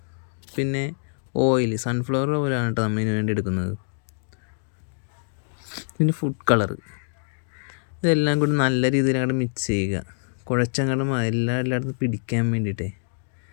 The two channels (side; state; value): right; silent; digital silence